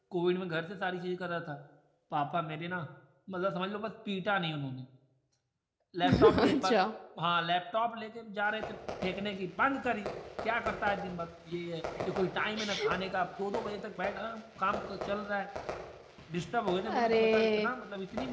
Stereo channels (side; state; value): both; identical; correlation 1.00